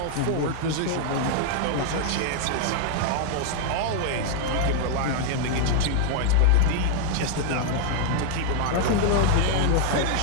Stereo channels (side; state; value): both; different; correlation 0.00